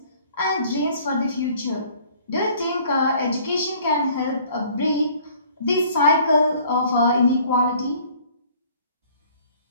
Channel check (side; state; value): both; inverted; correlation -0.55